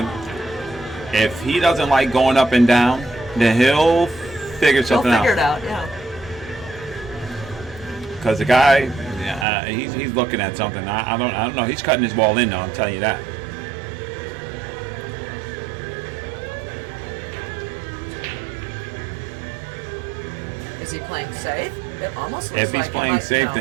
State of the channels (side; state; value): left; drops out; at 9.5 s